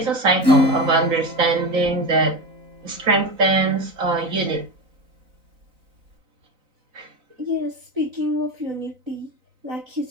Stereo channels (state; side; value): late; left; 4.0 ms